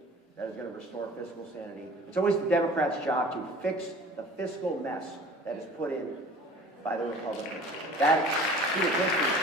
that is going to restore fiscal sanity. It's always the Democrats' job to fix the fiscal mess that is put in by the Republicans. That, through the history,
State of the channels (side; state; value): both; normal; correlation 0.45